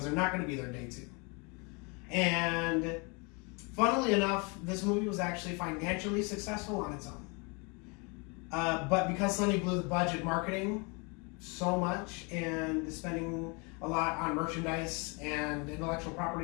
they're not going to be there day two. And funnily enough, this movie was actually financially successful on its own. But because Sony blew the budget marketing so much and spending a lot on merchandise and intellectual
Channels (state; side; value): quieter; right; 31.3 dB